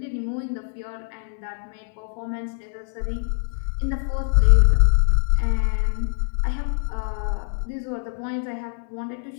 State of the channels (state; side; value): silent; right; 63 dB below the other